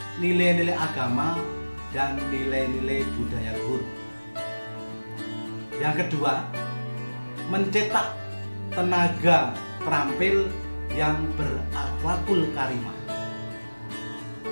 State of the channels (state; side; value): inverted; both; correlation -1.00